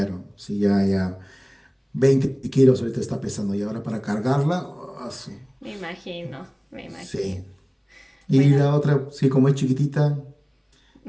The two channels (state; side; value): identical; both; correlation 1.00